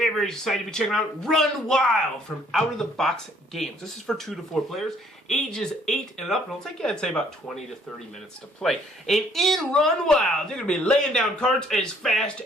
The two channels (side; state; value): both; normal; correlation 0.62